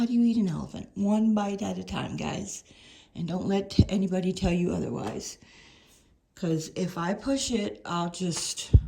do you eat an elephant? 1 bite at a time, guys. And don't let anybody tell you otherwise. Because if I push it, I'll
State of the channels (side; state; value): both; identical; correlation 1.00